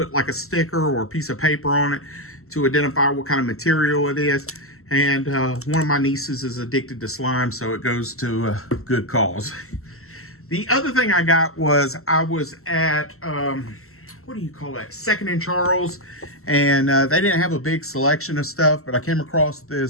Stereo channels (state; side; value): late; right; 0.63 ms